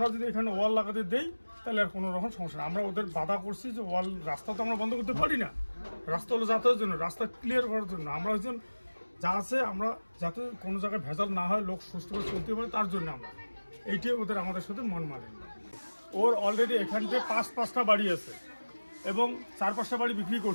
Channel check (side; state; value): both; inverted; correlation -1.00